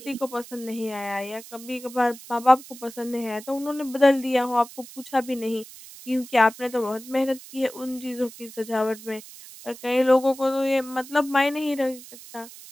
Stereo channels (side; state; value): right; noise; hiss, 17 dB below the sound